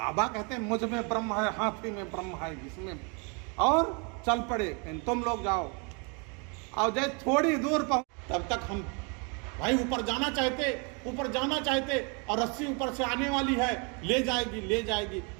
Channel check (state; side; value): quieter; left; 34.5 dB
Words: कहते हैं मुझ में ब्रह्म है, हाथी में ब्रह्म है, जिसमें, और चल पड़े, तुम लोग जाओ। और जब थोड़ी दूर पहुंच, तब तक हम भाई ऊपर जाना चाहते और रस्सी ऊपर से आने वाली है, ले जाएगी।